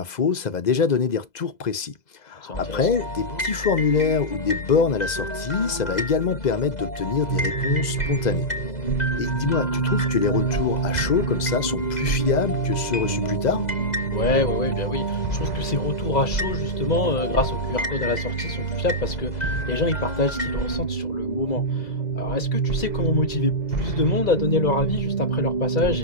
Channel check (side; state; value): right; late; 2.0 ms